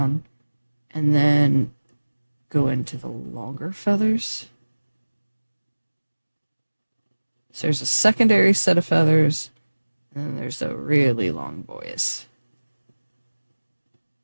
and then go into the longer feathers. So there's a secondary set of feathers, and then there's the really long boys.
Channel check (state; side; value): inverted; both; correlation -1.00